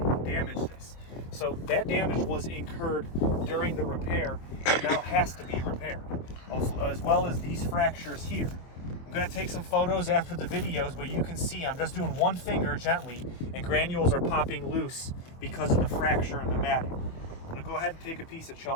damaged this. So that damage was incurred during the repair and now has to be repaired, as well as these fractures here. I'm going to take some photos after the videos, but you can see I'm just doing one finger gently and granules are popping loose because of the fracture in the matting. I'm going to go ahead and take a piece of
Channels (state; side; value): late; right; 24 ms